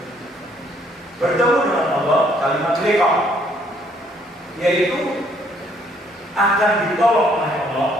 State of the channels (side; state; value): both; normal; correlation 0.65